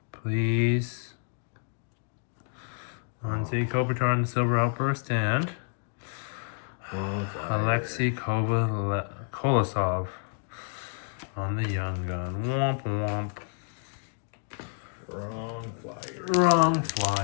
Please. Anze Kopitar on the Silver Outburst, and Alexei Kolosov on the Young Gun. Womp womp. Wrong flyer. Wrong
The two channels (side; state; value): right; silent; digital silence